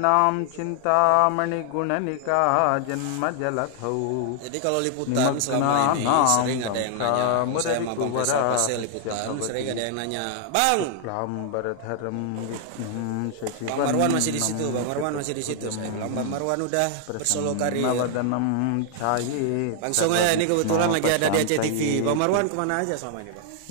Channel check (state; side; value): different; both; correlation -0.01